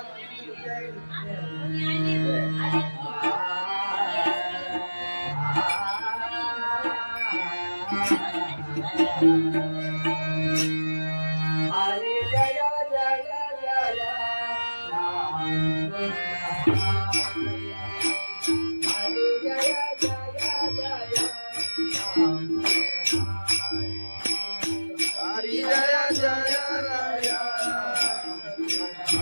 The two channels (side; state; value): both; inverted; correlation -1.00